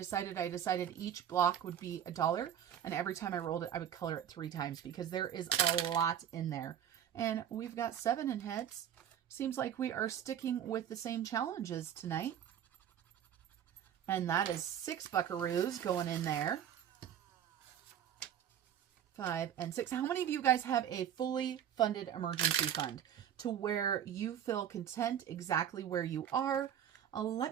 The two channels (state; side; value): quieter; left; 9.7 dB